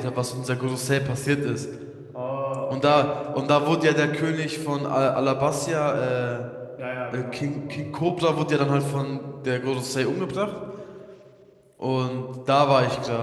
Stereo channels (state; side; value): identical; both; correlation 1.00